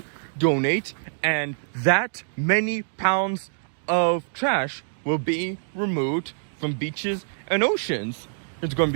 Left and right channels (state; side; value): silent; left; digital silence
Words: donate, and that many pounds of trash will be removed from beaches and oceans. It's going to